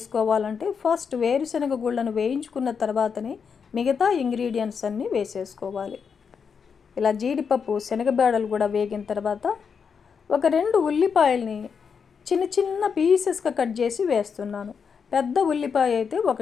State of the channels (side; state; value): right; quieter; 6.3 dB